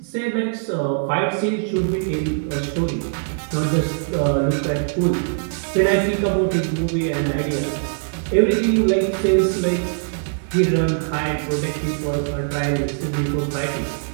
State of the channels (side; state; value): left; silent; digital silence